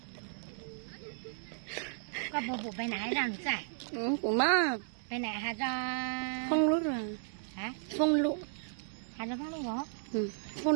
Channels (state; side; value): silent; left; digital silence